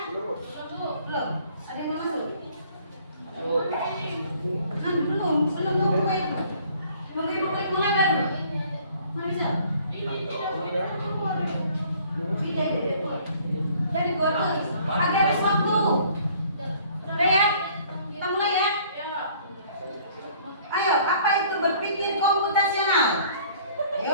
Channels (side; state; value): both; inverted; correlation -0.57